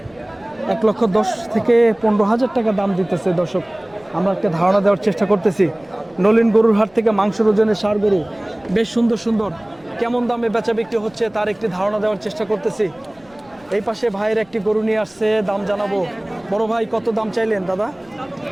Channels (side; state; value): left; noise; rumble, 29 dB below the sound